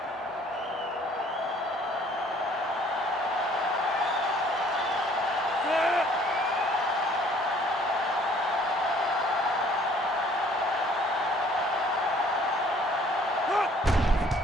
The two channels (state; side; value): normal; both; correlation 0.57